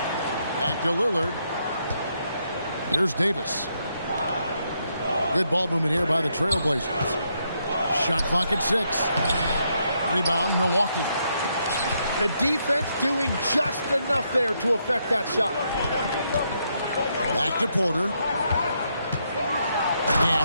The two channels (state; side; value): inverted; both; correlation -0.77